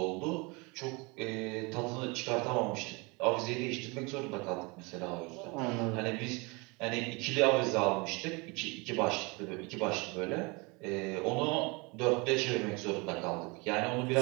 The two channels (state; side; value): quieter; left; 27.7 dB